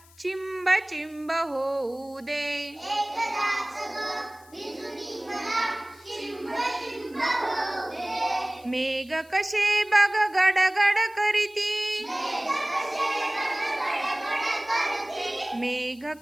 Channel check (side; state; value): left; noise; hiss, 26 dB below the sound